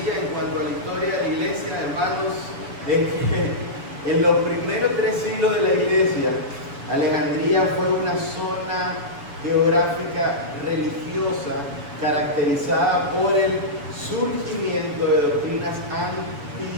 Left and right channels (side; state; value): left; late; 7.0 ms